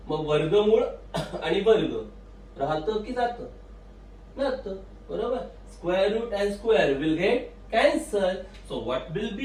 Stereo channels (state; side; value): identical; both; correlation 1.00